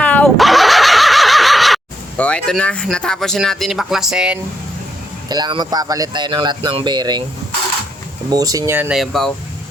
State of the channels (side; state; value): both; normal; correlation 0.79